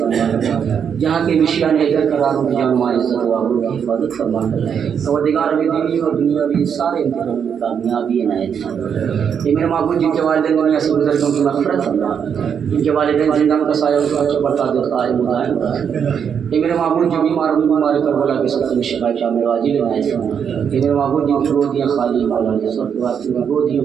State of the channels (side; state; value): left; quieter; 7.5 dB